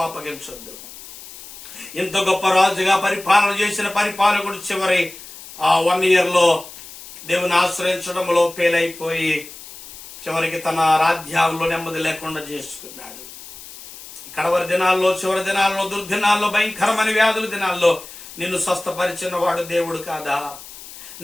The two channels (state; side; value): noise; left; hiss, 16 dB below the sound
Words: ఇంత గొప్ప రాజుగా పరిపాలన చేసిన పరిపాలకుడు చివరి 1 year లో దేవుని ఆశ్రయించడంలో ఫెయిల్ అయిపోయి చివరికి తన రాజ్యాల్లో నెమ్మది లేకుండా చేసుకున్నాడు. కడవరి దినాల్లో, చివరి దినాల్లో, దుర్దినాల్లో, భయంకరమైన వ్యాధుల దినాల్లో నిన్ను స్వస్థపరిచిన వాడు దేవుడు కాదా?